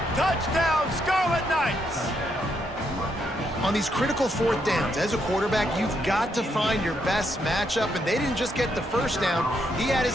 Touchdown, Scarlet Knights. On these critical 4th downs, as a quarterback, you've got to find your best matchup, and they didn't just get the first down. He had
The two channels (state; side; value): normal; both; correlation 0.77